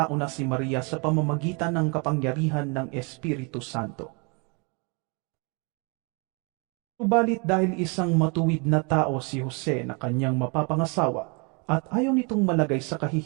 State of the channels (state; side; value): quieter; left; 32.6 dB